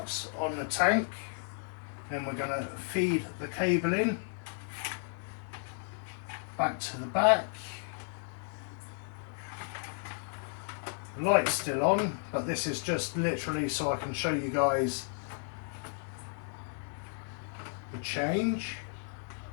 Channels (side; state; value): right; silent; 55 dB below the other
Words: on the tank. Then we're going to feed the cable in back to the back. The light's still on, but this is just literally so I can show you guys the change.